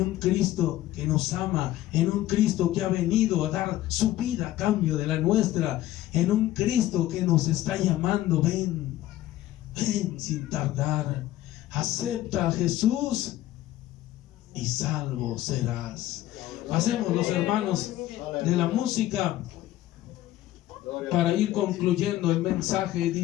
Cristo que nos ama, en un Cristo que ha venido a dar su vida a cambio de la nuestra, en un Cristo que nos está llamando: ven, ven sin tardar, acepta a Jesús y salvo serás. Pasemos, los hermanos, de la música para ir concluyendo el mensaje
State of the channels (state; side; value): quieter; right; 14.6 dB